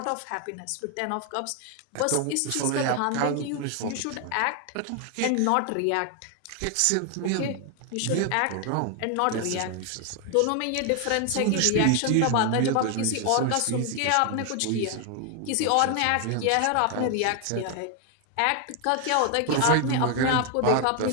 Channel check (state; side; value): different; both; correlation 0.01